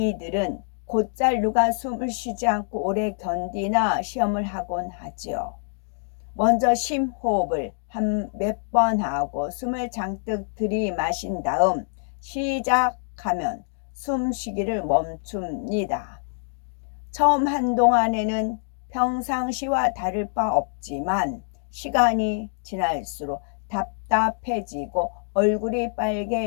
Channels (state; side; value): silent; right; digital silence